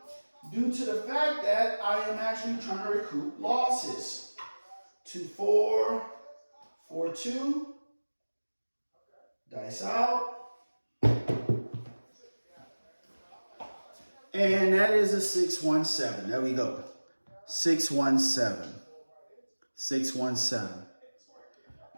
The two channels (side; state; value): both; inverted; correlation -1.00